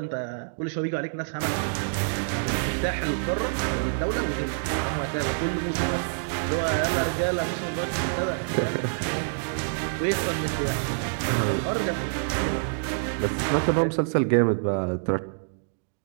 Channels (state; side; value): silent; left; digital silence